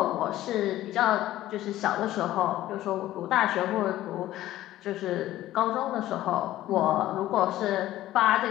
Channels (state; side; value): quieter; right; 14.6 dB